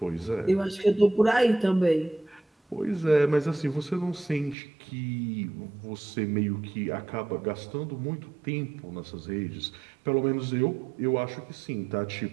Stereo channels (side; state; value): left; drops out; at 4.5 s